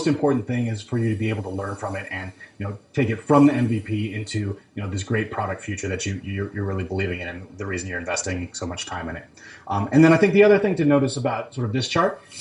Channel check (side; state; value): both; identical; correlation 1.00